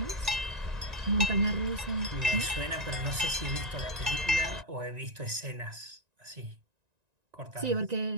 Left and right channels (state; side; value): late; left; 1.9 ms